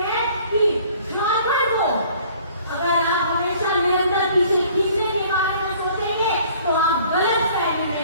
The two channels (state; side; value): inverted; both; correlation -0.54